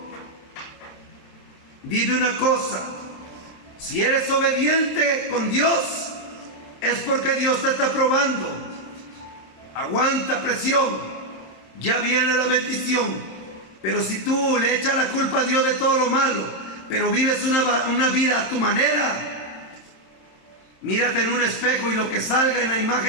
Dime una cosa: si eres obediente con Dios, es porque Dios te está probando. Aguanta presión, ya viene la bendición. Pero si tú le echas la culpa a Dios de todo lo malo, pero vives una vida a tu manera, mírate en un espejo y lo que salga en la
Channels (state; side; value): late; right; 27 ms